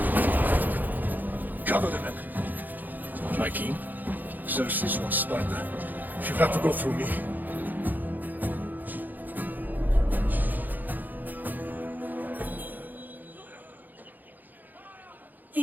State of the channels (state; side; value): late; left; 0.085 ms